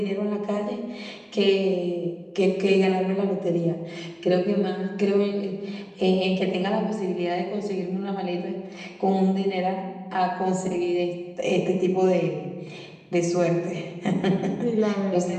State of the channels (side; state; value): both; identical; correlation 1.00